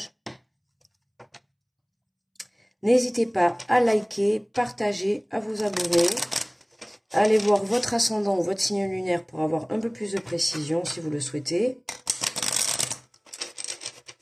N'hésitez pas à liker, partager, à vous abonner. Allez voir votre ascendant ou votre signe lunaire pour avoir un peu plus de précision si vous le souhaitez.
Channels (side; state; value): both; identical; correlation 1.00